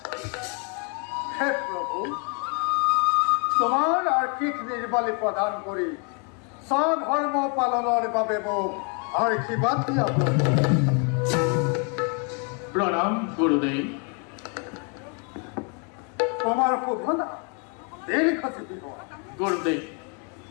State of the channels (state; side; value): quieter; right; 37.1 dB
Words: হে প্ৰভু, তোমাৰ আৰ্থিক নিৰ্বালী প্ৰদান কৰি স্বধৰ্ম পালনৰ বাবে মোক আশীৰ্বাদ দিয়া। প্ৰণাম গুৰুদেৱ। তোমাৰ শোভনা দীৰ্ঘজীৱী হোৱা। গুৰুদেৱ,